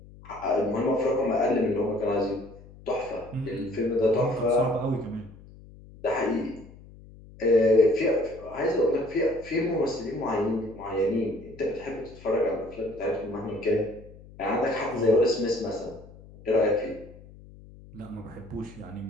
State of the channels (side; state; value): left; noise; hum, 20 dB below the sound